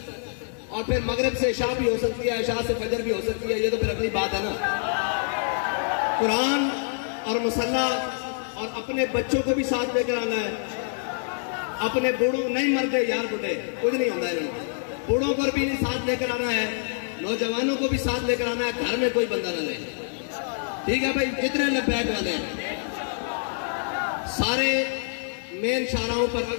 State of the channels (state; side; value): silent; right; digital silence